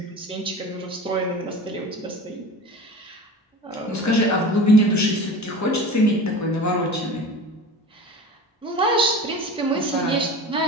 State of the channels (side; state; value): both; normal; correlation 0.35